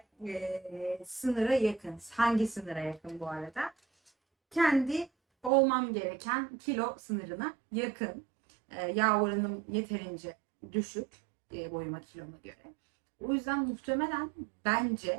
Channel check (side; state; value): left; drops out; at 5.5 s